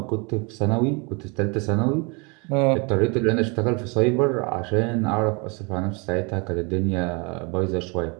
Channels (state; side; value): quieter; left; 31.1 dB